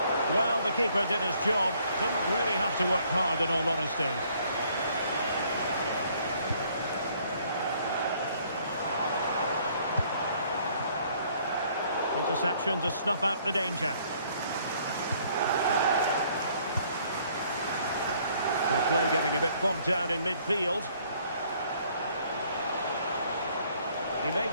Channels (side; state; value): both; inverted; correlation -0.63